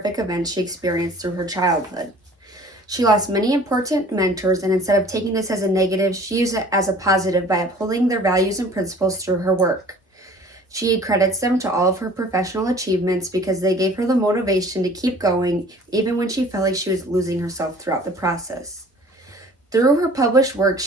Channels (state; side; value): normal; both; correlation 0.50